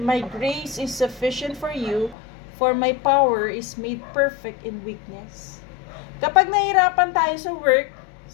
grace is sufficient for you, for my power is made perfect in weakness. Kapag nahirapan tayo sa work,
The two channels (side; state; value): right; drops out; at 2.1 s